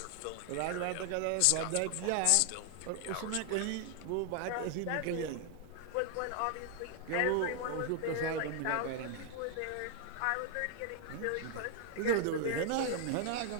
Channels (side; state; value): both; different; correlation 0.00